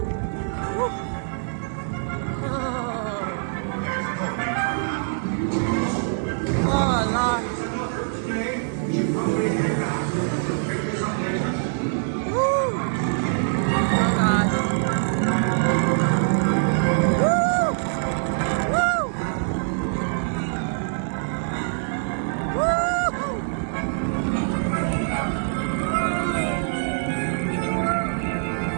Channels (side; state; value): left; silent; digital silence